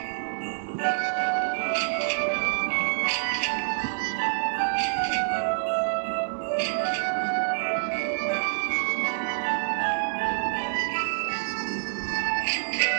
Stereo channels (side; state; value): left; silent; digital silence